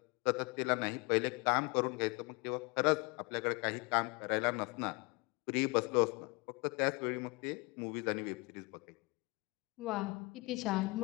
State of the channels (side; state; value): right; quieter; 27.4 dB